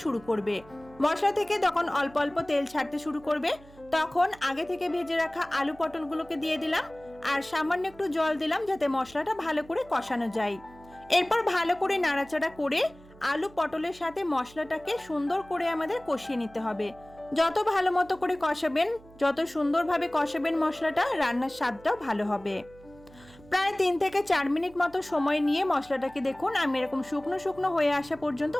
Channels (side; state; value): right; noise; hum, 23 dB below the sound